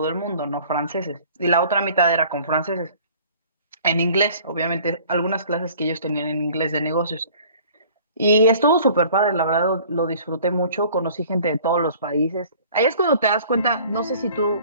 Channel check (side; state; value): both; inverted; correlation -0.51